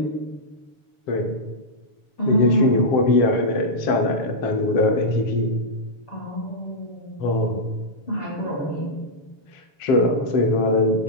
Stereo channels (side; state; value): right; late; 7.0 ms